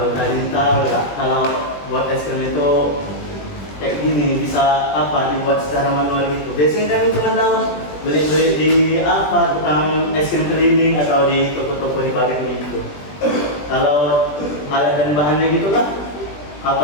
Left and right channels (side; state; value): right; late; 20 ms